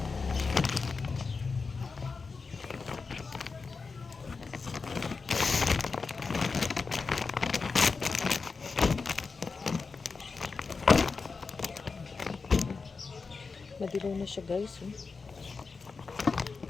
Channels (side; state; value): right; quieter; 4.6 dB